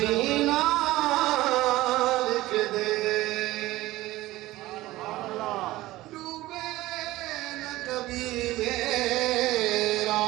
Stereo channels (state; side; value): quieter; left; 17.4 dB